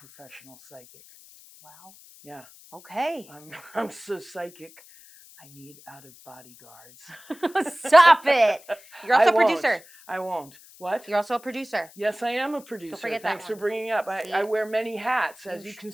psychic. Wow. Yeah. Okay. I'm so psychic. I need out-of-body guards. Stop it. You're also a producer. I won't. What? You're also a producer. Yes, I am a producer. Don't forget Thanks that for bringing it up. I wear many hats. As you can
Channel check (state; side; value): noise; left; hiss, 23 dB below the sound